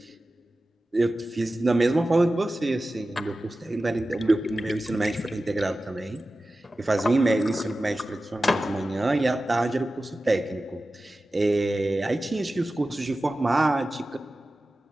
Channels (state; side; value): normal; both; correlation 0.95